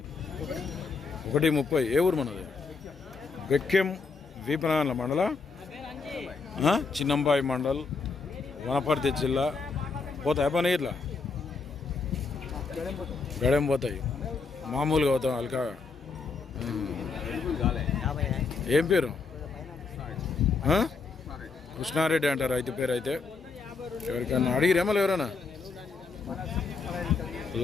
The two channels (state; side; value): quieter; right; 4.5 dB